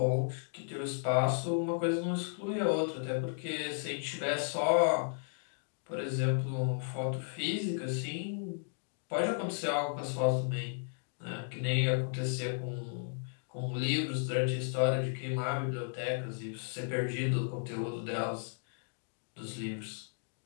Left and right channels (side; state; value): right; silent; digital silence